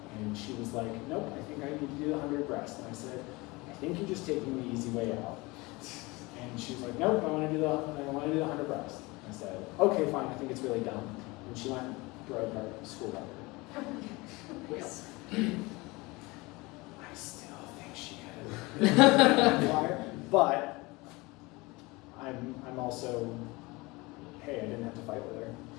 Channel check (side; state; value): right; quieter; 23.6 dB